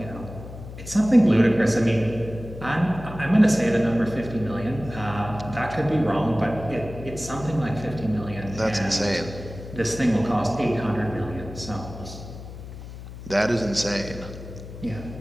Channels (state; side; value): noise; left; hum, 13 dB below the sound